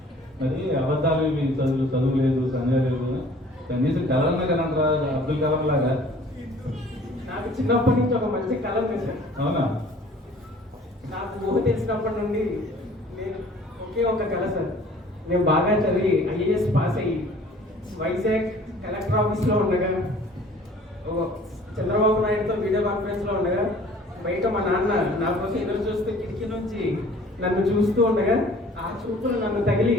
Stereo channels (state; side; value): normal; both; correlation 0.51